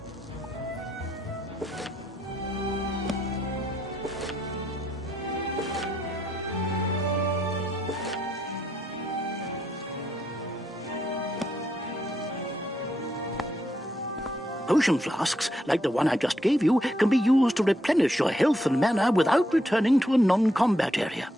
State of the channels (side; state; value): both; normal; correlation 0.78